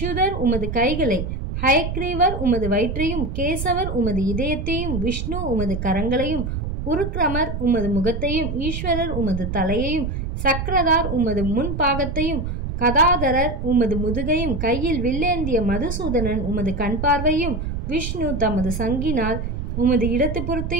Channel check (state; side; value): noise; right; rumble, 4 dB below the sound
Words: உமது கைகளை, ஹயக்ரீவர் உமது வயிற்றையும், கேசவர் உமது இதயத்தையும், விஷ்ணு உமது கரங்களையும், உருக்ரமர் உமது முகத்தையும், ஈஸ்வரர் உமது தலையையும், சக்கரதார் உமது முன்பாகத்தையும், கதாதரர் உமது முதுகையும், கையில் வில்லேந்திய மதுசூதனன் உமது கண் பார்வையும், விஷ்ணு தமது சங்கினால் உமது இடத்து